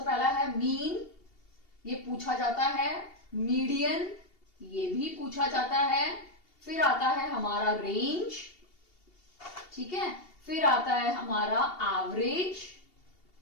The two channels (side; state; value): right; late; 2.8 ms